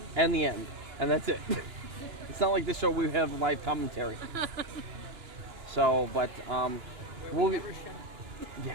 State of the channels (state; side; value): late; left; 2.9 ms